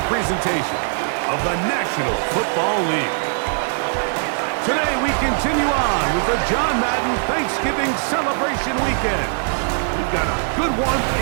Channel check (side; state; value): left; silent; 65 dB below the other